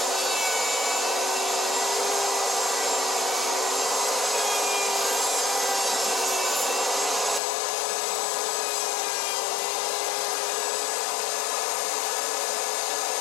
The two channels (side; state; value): right; drops out; at 7.4 s